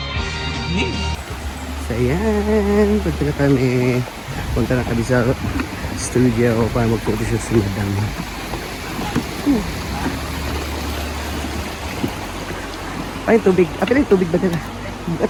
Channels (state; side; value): identical; both; correlation 1.00